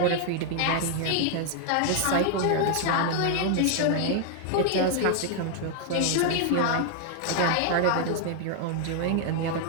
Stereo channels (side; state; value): both; different; correlation 0.00